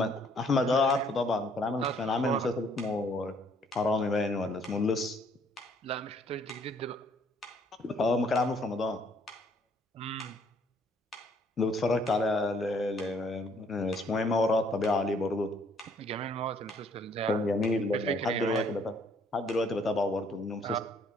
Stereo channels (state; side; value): normal; both; correlation 0.64